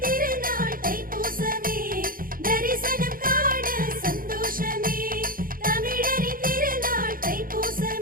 திருநாள் தைப்பூசமே, தரிசனம் காண சந்தோஷமே. தமிழரின் திருநாள்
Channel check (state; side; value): late; left; 0.41 ms